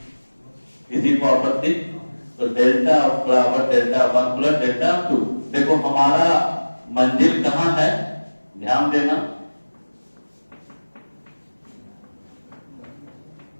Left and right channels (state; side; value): inverted; both; correlation -1.00